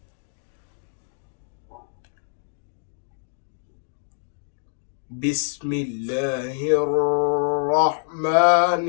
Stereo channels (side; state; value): right; silent; digital silence